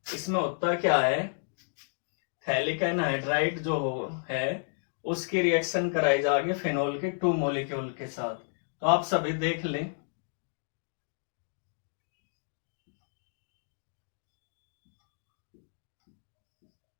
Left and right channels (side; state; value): right; silent; digital silence